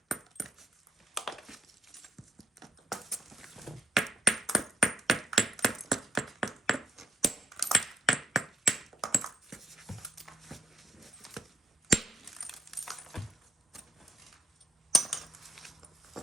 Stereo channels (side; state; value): both; normal; correlation 0.76